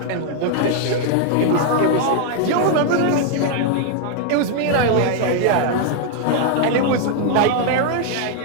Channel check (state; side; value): different; both; correlation 0.00